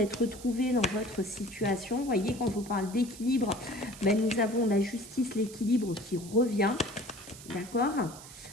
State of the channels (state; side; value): noise; right; hiss, 16 dB below the sound